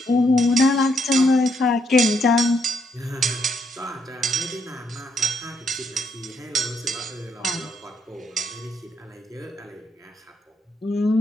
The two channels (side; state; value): both; normal; correlation 0.75